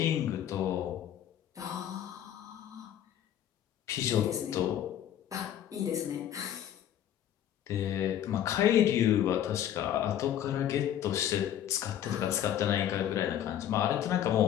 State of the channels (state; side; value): quieter; right; 10.8 dB